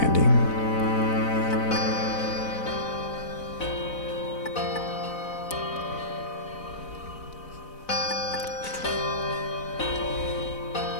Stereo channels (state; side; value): late; right; 4.0 ms